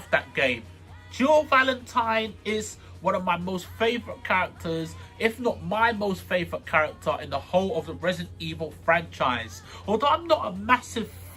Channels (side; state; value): both; identical; correlation 1.00